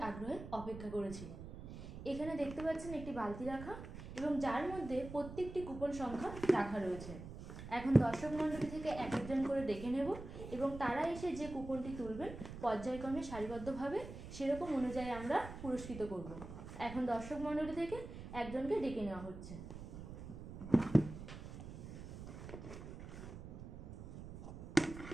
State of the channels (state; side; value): noise; right; rumble, 11 dB below the sound